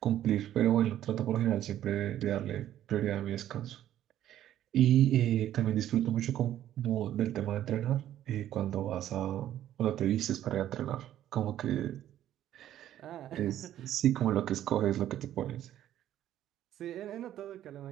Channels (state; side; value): quieter; left; 12.0 dB